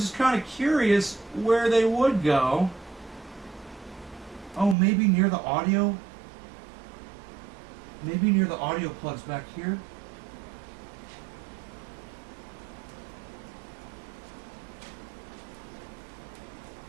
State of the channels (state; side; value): drops out; left; at 4.8 s